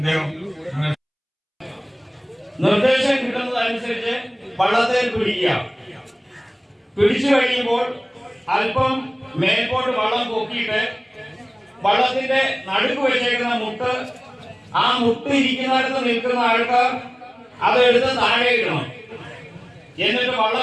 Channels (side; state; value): both; identical; correlation 1.00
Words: നിർദ്ദേശം കിട്ടുന്നതനുസരിച്ച് വള്ളത്തിൽ പിടിച്ചു കഴിയുമ്പോൾ അല്പം മേൽപോട്ട് വള്ളം പൊക്കിയിട്ട് വള്ളത്തിന്റെ നടുക്ക് വെച്ചേക്കുന്ന മുട്ട്, ആ മുട്ട് ഇരിക്കുന്നിടത്ത് നിൽക്കുന്ന ആൾക്കാർ അതെടുത്ത് താഴെ ഇടണം. എന്നിട്ട്